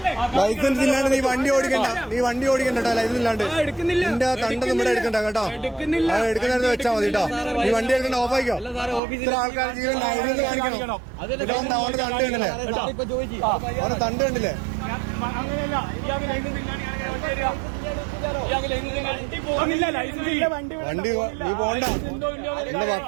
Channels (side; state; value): left; drops out; at 9.0 s